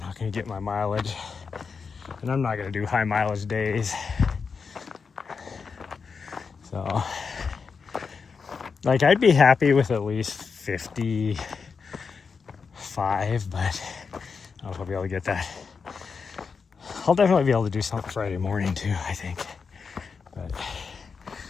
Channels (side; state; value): right; quieter; 5.4 dB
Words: gonna get my mileage, and I'm not gonna do high mileage days. So, like, I'd be happy with at least 55, but I don't know if I'll be able to get that. I'll definitely be able to do something Friday morning too, I think. But